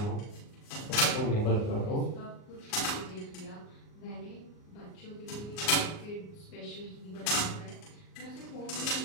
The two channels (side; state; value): right; late; 38 ms